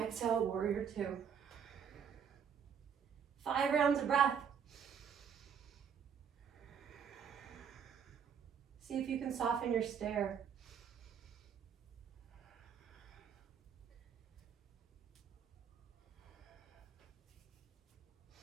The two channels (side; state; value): left; quieter; 7.5 dB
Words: warrior two. 5 rounds of breath. See if you can soften your stare.